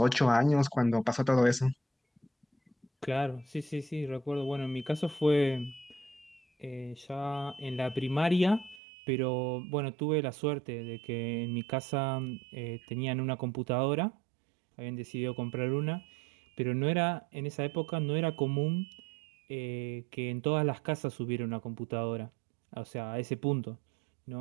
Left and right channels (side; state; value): left; drops out; at 8.8 s